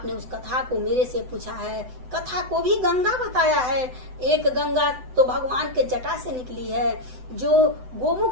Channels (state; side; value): late; left; 7.9 ms